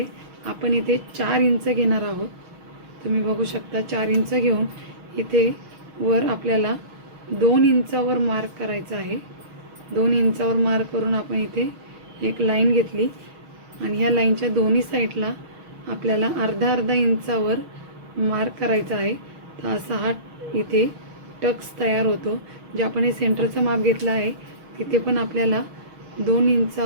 आपण इथे 4 इंच घेणार आहोत। तुम्ही बघू शकता 4 इंच घेऊन इथे वर आपल्याला 2 इंचावर मार्क करायचा आहे। 2 इंचावर मार्क करून आपण इथे एक लाईन घेतली आणि ह्या लाईनच्या दोन्ही साईडला आपल्याला अर्धा इंचावर मार्क करायचा आहे। तर असा हा इथे टक्स तयार होतो। जे आपण हे सेंटरचं माप घेतलं आहे तिथे पण आपल्याला 2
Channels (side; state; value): left; late; 6.3 ms